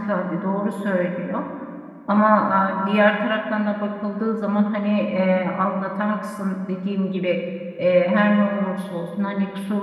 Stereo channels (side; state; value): both; identical; correlation 1.00